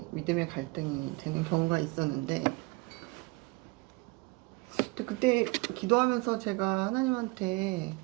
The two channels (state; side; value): quieter; left; 25.7 dB